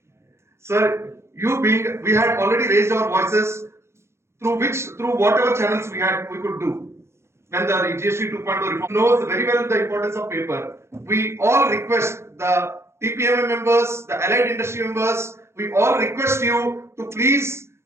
Sir, we had already raised our voices through whatever channels we could do. When the GST 2.0 reform knows very well the importance of paper. We all request the TPMA members, the allied industry members, we all request you to please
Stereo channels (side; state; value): left; late; 0.13 ms